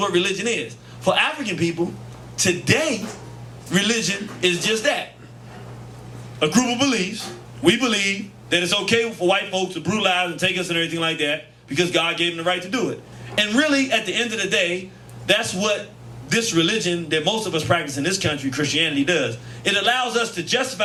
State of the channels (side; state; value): both; identical; correlation 1.00